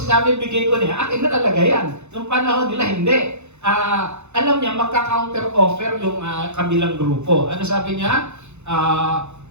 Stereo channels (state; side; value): late; left; 0.82 ms